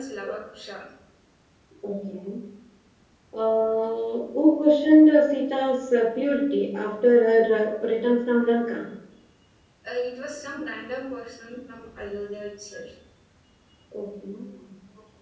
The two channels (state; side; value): identical; both; correlation 1.00